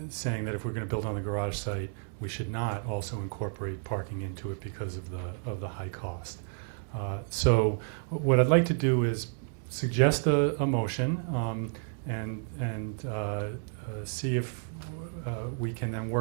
saying that if we're going to build on the garage site, we should not also incorporate parking into it because of the high cost. So what I'd like to do is suggest a motion and see if we can then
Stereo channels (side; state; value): left; silent; 57 dB below the other